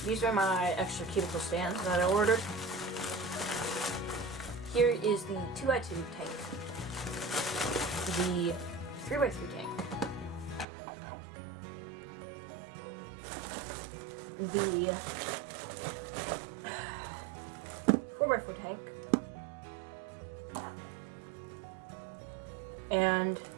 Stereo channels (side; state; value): left; drops out; at 10.7 s